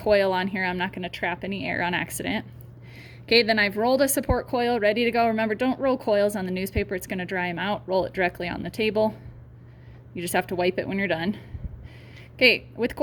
on here, I'm not going to trap any air on accident. Okay, then I've rolled a support coil, ready to go. Remember, don't roll coils on the newspaper, it's going to dry them out. Roll it directly on the table. You just have to wipe it when you're done. Okay, with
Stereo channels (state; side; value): identical; both; correlation 1.00